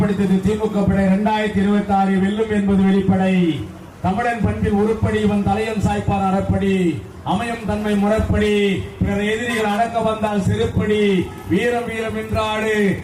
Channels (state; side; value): identical; both; correlation 1.00